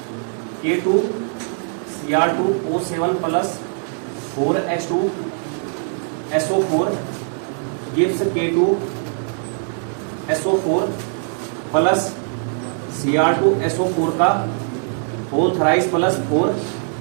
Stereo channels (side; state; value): left; silent; 65 dB below the other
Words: K2Cr2O7 plus 4H2SO4 gives K2SO4 plus Cr2SO4 का whole थराइस plus